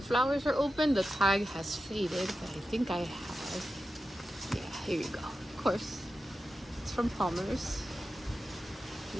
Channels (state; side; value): normal; both; correlation 0.91